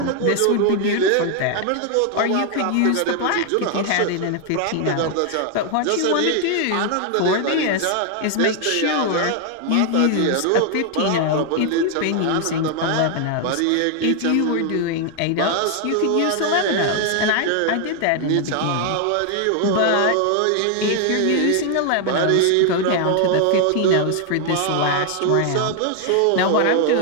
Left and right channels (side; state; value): both; different; correlation 0.00